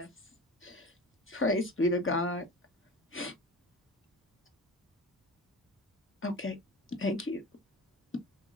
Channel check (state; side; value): normal; both; correlation 0.33